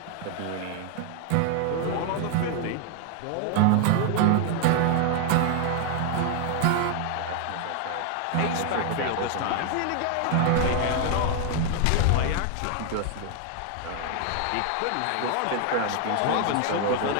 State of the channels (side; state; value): both; different; correlation 0.00